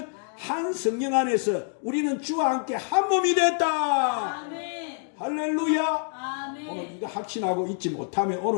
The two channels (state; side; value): silent; right; 61 dB below the other